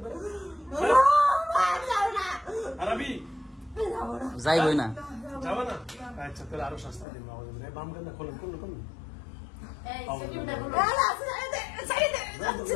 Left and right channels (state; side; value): drops out; right; at 7.1 s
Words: পারে যাওনা আরবি যাইবই না যাবে না আচ্ছা তাহলে আরো শাস্তি দিন আমাদের বাম কান্না খোলেন কোন